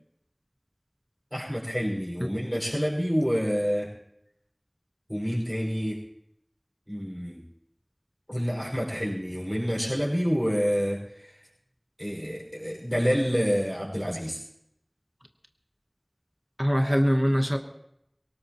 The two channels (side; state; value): both; identical; correlation 1.00